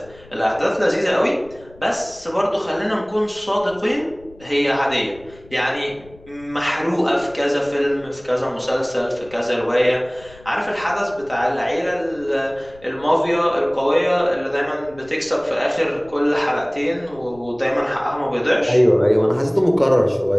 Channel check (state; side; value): noise; left; rumble, 24 dB below the sound